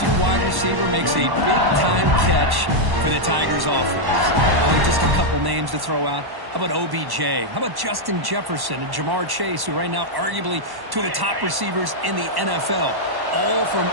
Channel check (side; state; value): left; late; 1.1 ms